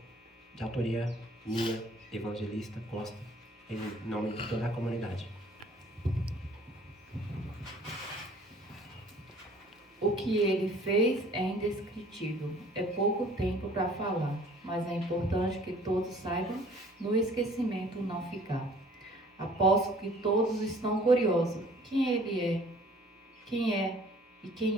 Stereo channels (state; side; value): normal; both; correlation 0.54